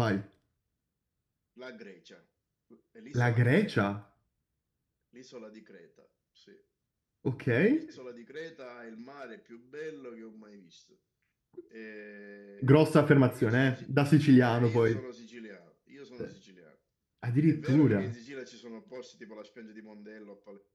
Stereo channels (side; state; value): both; identical; correlation 1.00